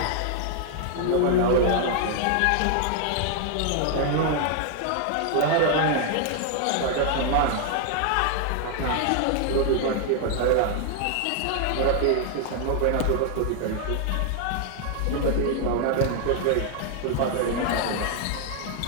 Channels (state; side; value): different; both; correlation 0.00